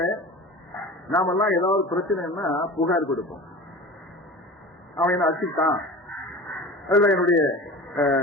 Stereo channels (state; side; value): normal; both; correlation 0.36